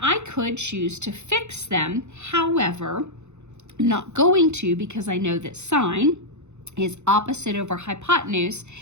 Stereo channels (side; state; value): left; late; 0.83 ms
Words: I could choose to fix them. However, I'm not going to because I know that sine is opposite over hypotenuse,